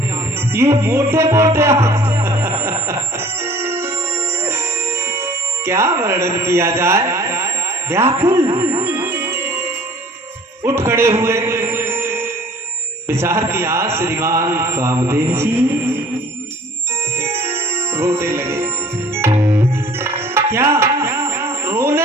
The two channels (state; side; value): normal; both; correlation 0.51